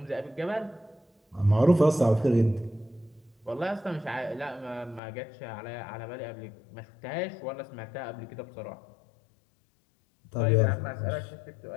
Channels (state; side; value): drops out; right; at 5.0 s